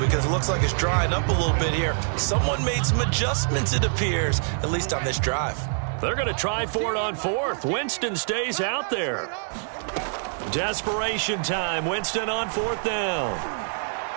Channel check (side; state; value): left; silent; digital silence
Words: Because it looks like it's drying up a little bit here. Someone made some adjustments, it appears, at least on this drive. They're going to try for it on 4th. Winston stays out there. Desperation time. Winston on 4th down.